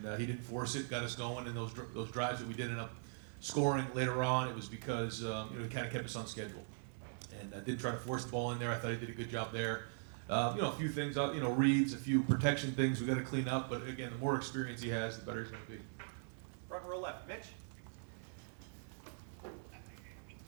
he didn't force it, got us going in those drives that we did end up scoring later on. It was because he kind of kept us on schedule, and didn't try to force the ball in there. I thought he did a good job there. A few things, reads, a few protection things we got to clean up. But again, the more experience he has, the better he's going to be. Front row left, Mitch.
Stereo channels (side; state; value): left; silent; digital silence